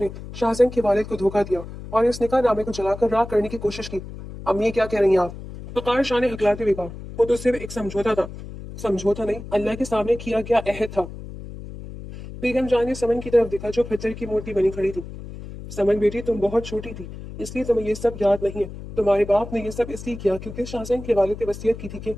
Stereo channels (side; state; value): left; noise; hum, 12 dB below the sound